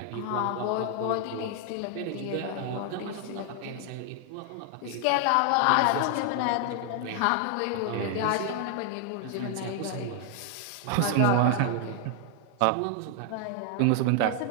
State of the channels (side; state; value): both; different; correlation 0.00